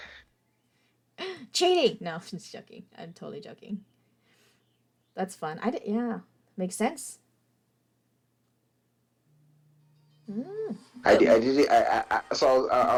cheating. No, I'm just joking. I'm totally joking. That's fun. Yeah, makes sense. Mm. I did it. So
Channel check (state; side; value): identical; both; correlation 1.00